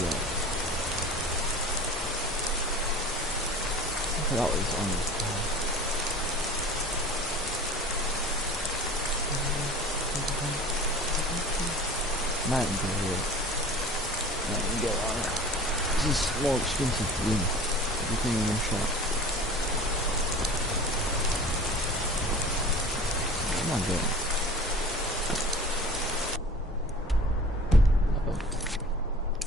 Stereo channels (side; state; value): both; normal; correlation 0.42